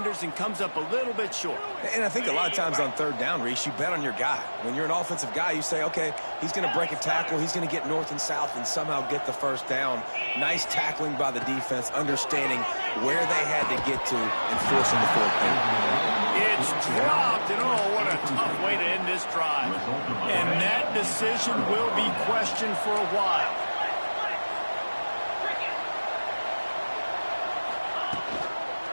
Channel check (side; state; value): both; inverted; correlation -1.00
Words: and comes up a little bit short. And I think a lot of times on 3rd down, Reese, you bet on your guy. When you're an offensive guy, you say, okay, he's going to break a tackle, he's going to get north and south and somehow get the first down. Nice tackling by the defense, understanding where they had to get to and forcing the 4th down. It's dropped, and oh, what a tough way to end this drive. And that decision will be questioned for a while.